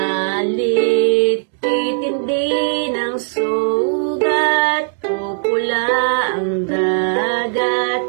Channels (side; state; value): left; silent; 65 dB below the other